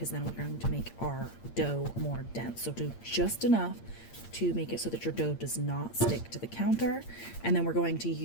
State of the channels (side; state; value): right; late; 8.7 ms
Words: then we're going to make our dough more dense. So do just enough to make it so that your dough does not stick to the counter. And then we're going to